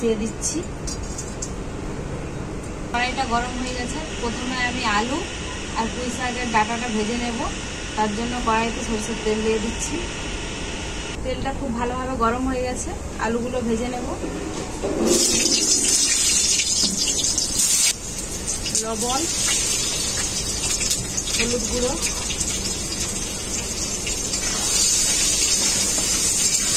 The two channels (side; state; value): both; identical; correlation 1.00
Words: দিচ্ছি। কড়াইটা গরম হয়ে গেছে। প্রথমে আমি আলু আর পুঁই শাকের ডাঁটাটা ভেজে নেব। তার জন্য কড়াইতে সরষের তেল দিয়ে দিচ্ছি। তেলটা খুব ভালোভাবে গরম হয়ে গেছে, আলুগুলো ভেজে নেব। লবণ, হলুদ গুঁড়ো,